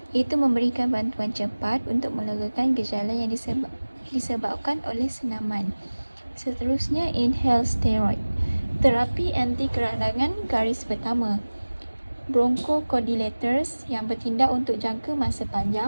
iaitu memberikan bantuan cepat untuk melegakan gejala yang disebabkan oleh senaman. Seterusnya, inhaled steroid. Terapi anti keradangan garis pertama. Bronchodilators yang bertindak untuk jangka masa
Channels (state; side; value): inverted; both; correlation -1.00